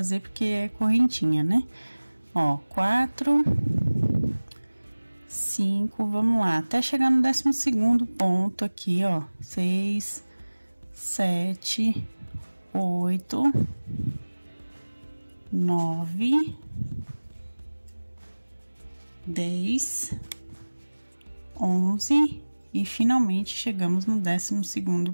porque é correntinha, né? Ó, 4, 5, vamos lá, até chegar no 12º ponto aqui, ó. 6, 7, 8, 9, 10, 11 e finalmente chegamos no 12º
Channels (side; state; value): both; inverted; correlation -1.00